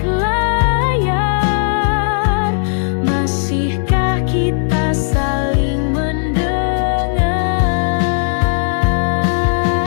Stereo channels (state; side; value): silent; right; digital silence